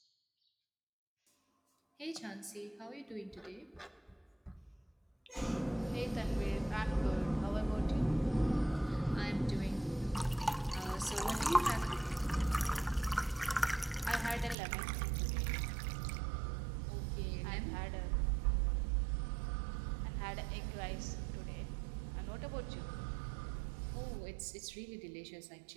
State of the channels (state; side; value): drops out; left; at 14.6 s